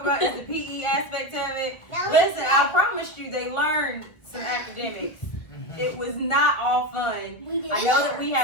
about is the PE aspect of it? Listen, I promised you they learned some academics. It was not all fun. I know that we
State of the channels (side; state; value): right; late; 1.7 ms